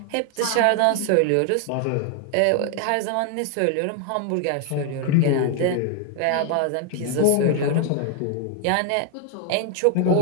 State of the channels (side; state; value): both; different; correlation 0.00